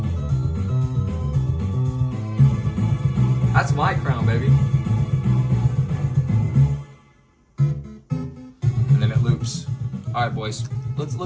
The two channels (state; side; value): identical; both; correlation 1.00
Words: That's my crown, baby. And then it loops. All right, boys.